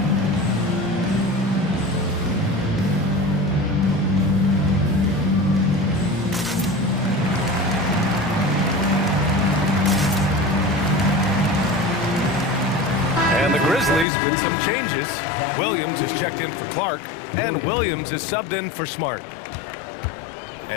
And the Grizzlies with some changes. Williams is checked in for Clark, and Williams is subbed in for Smart.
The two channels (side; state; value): right; drops out; at 14.1 s